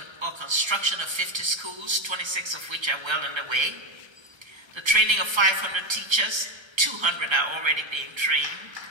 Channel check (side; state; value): left; late; 1.3 ms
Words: or construction of 50 schools, 26 of which are well underway. The training of 500 teachers, 200 are already being trained.